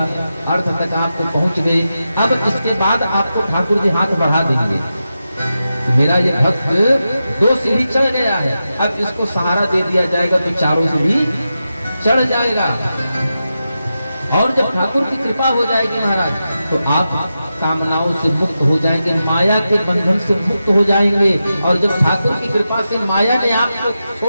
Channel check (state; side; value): inverted; both; correlation -0.90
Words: अर्थ तक आपको पहुंच गए। अब इसके बाद आपको ठाकुर जी हाथ बढ़ा देंगे। मेरा ये भक्त 2 सीढ़ी चढ़ गया है, अब इसको सहारा दे दिया जाएगा तो 4 सीढ़ी चढ़ जाएगा। और जब ठाकुर की कृपा हो जाएगी महाराज, तो आप कामनाओं से मुक्त हो जाएंगे, माया के बंधन से मुक्त हो जाएंगे। और जब ठाकुर की कृपा से माया ने आपको